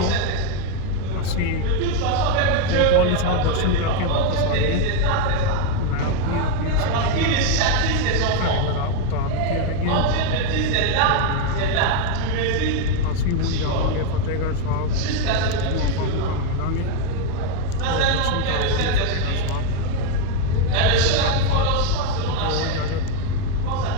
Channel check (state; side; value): different; both; correlation 0.01